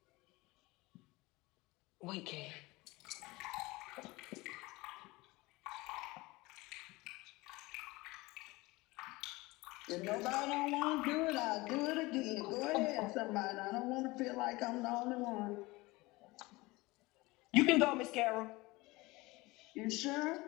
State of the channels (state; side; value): quieter; right; 21.9 dB